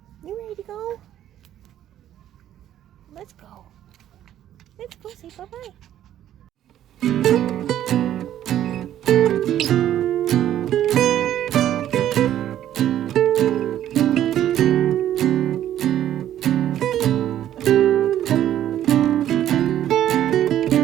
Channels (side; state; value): left; quieter; 11.6 dB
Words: You ready to go? Let's go. Let's go say bye-bye.